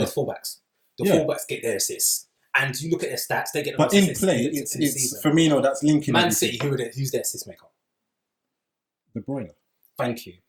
The fullbacks. Fullbacks get their assists. And you look at their stats, they get the most assists. But in play, it's Firmino that's linking. Man City, who's their assist maker? De Bruyne. Thank you.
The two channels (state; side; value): identical; both; correlation 1.00